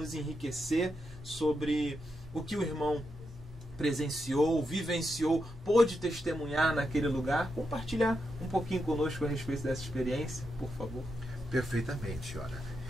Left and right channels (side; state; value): both; normal; correlation 0.85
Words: enriquecer sobre o que o irmão presenciou, vivenciou, pôde testemunhar naquele lugar. Compartilhar um pouquinho conosco a respeito dessa experiência, por favor. Perfeitamente, olha.